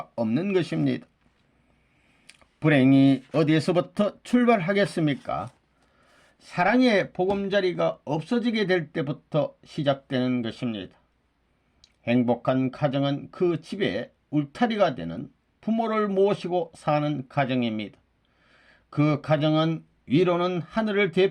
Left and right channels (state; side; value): identical; both; correlation 1.00